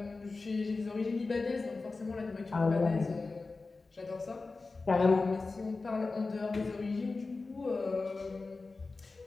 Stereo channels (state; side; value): quieter; right; 3.8 dB